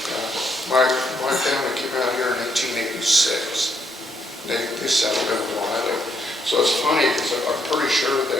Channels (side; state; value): both; normal; correlation 0.74